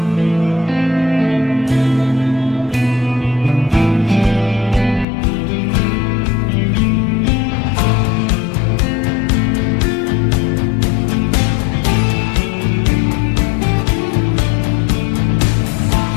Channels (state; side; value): drops out; right; at 5.1 s